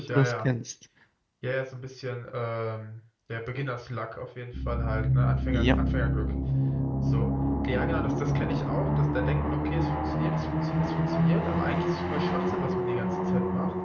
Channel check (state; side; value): identical; both; correlation 1.00